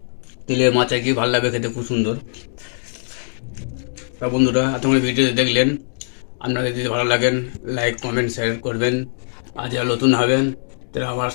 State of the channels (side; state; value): right; silent; digital silence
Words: তেলের মাছ আর কি, ভালো লাগবে খেতে, খুব সুন্দর। তা বন্ধুরা এতক্ষণ ভিডিও দেখলেন, আপনাদের যদি ভালো লাগেন লাইক কমেন্ট শেয়ার করবেন, আর যারা নতুন হবেন তারা আমার